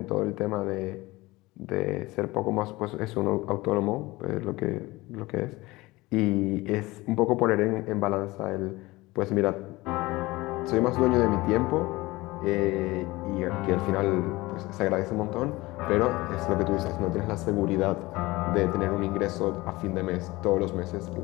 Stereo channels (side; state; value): right; quieter; 20.6 dB